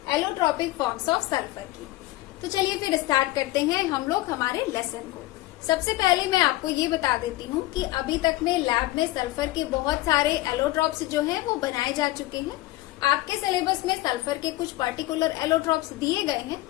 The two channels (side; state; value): right; quieter; 17.9 dB